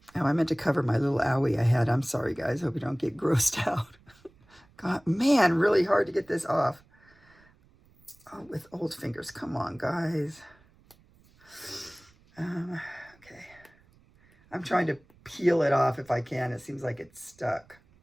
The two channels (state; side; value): noise; right; rumble, 30 dB below the sound